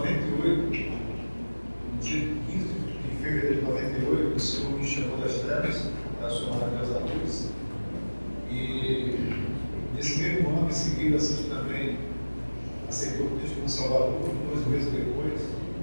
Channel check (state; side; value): inverted; both; correlation -1.00